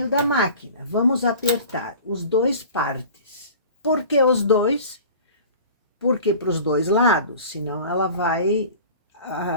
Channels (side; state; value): both; inverted; correlation -0.41